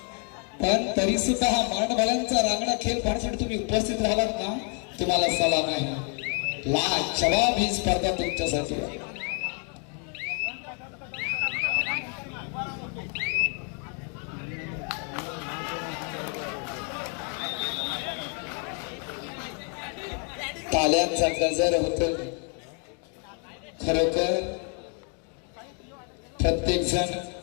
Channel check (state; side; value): quieter; right; 39.5 dB